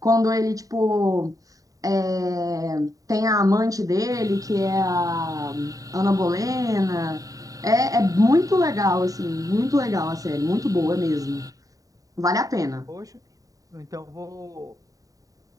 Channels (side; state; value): left; late; 0.17 ms